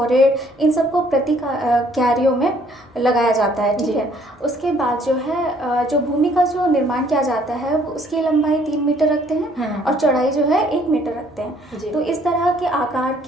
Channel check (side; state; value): both; normal; correlation 0.62